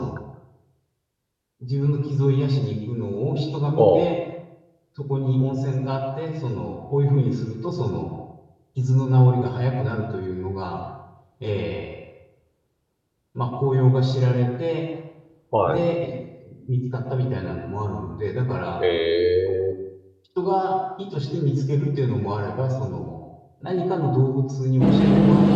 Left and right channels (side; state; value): both; identical; correlation 1.00